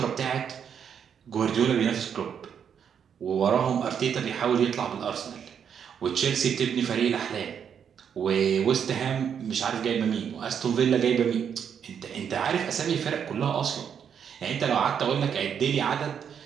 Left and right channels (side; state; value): left; quieter; 7.8 dB